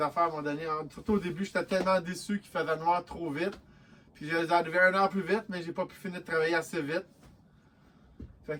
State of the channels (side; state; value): both; identical; correlation 1.00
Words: à un moment donné. Surtout au début, j'étais tellement déçu qu'il faisait noir trop vite. Puis je les arrivé 1 heure plus vite, mais j'ai pas pu finir de travailler assez vite. Fait